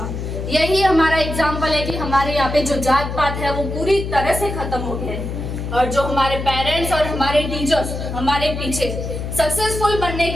यही हमारा एग्जाम्पल है कि हमारे यहाँ पे जो जात पात है वो पूरी तरह से खत्म हो गया है। और जो हमारे पेरेंट्स और हमारे टीचर्स हमारे पीछे सक्सेसफुल बनने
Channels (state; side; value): noise; left; hum, 5 dB below the sound